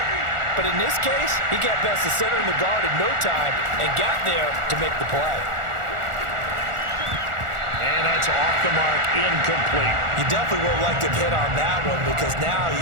But in this case, he got past the center and the guard in no time and got there to make the play. And that It's off the mark, incomplete. You definitely would like to have hit on that one because now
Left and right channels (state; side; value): late; left; 1.4 ms